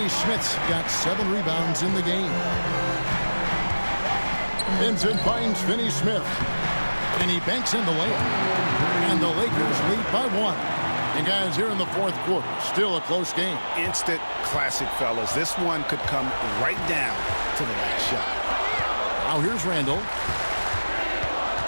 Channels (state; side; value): inverted; both; correlation -1.00